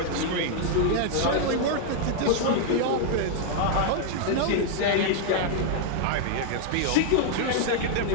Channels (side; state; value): both; different; correlation 0.00